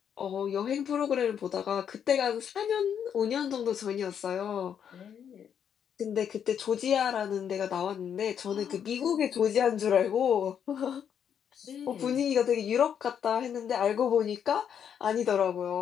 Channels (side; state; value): right; quieter; 8.3 dB